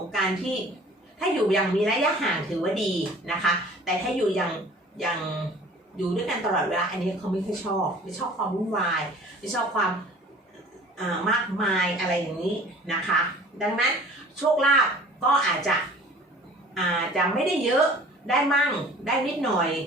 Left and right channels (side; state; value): both; normal; correlation 0.47